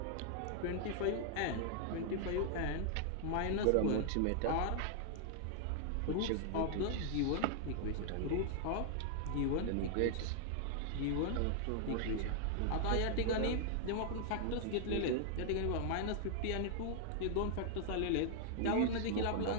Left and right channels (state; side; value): different; both; correlation 0.00